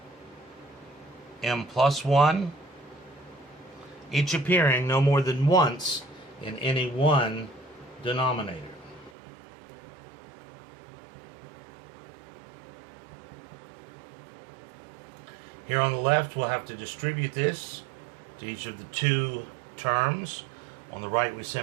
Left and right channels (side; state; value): left; drops out; at 9.1 s